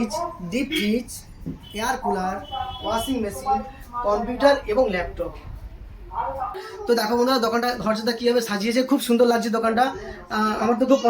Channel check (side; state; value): both; identical; correlation 1.00